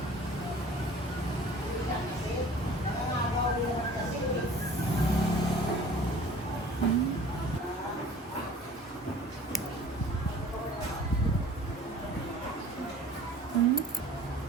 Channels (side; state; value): both; normal; correlation 0.47